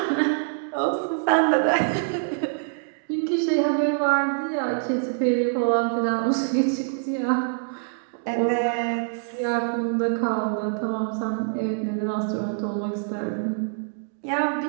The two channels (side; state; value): left; silent; digital silence